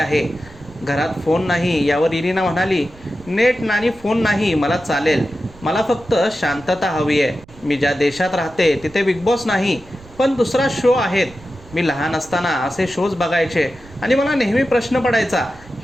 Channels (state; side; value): noise; right; rumble, 22 dB below the sound